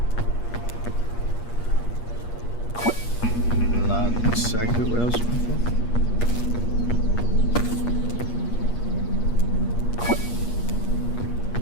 Not exactly what I was looking for.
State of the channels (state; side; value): late; right; 8.4 ms